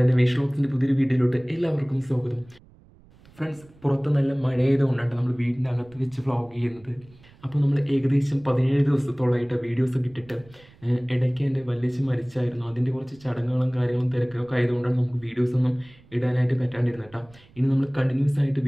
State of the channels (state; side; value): noise; right; rumble, 26 dB below the sound